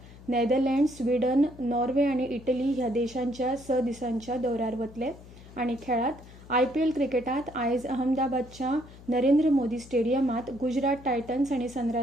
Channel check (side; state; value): left; noise; hum, 19 dB below the sound